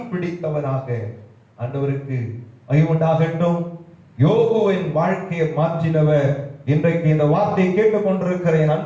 பிடித்தவனாக. ஆண்டவருக்கு மகிமையுண்டாகட்டும். யோபுவின் வாழ்க்கையை மாற்றினவர் இன்றைக்கு இந்த வார்த்தையை கேட்டுக் கொண்டிருக்கிற என்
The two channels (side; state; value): both; identical; correlation 1.00